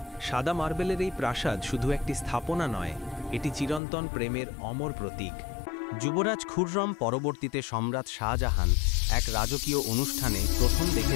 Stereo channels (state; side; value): drops out; right; at 3.8 s